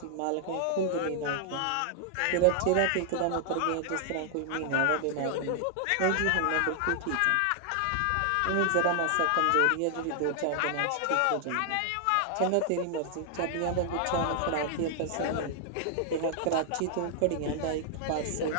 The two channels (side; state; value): both; different; correlation 0.00